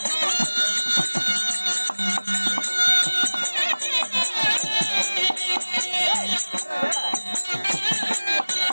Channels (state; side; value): inverted; both; correlation -1.00